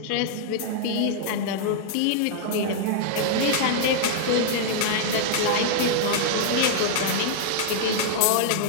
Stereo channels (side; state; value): both; different; correlation -0.01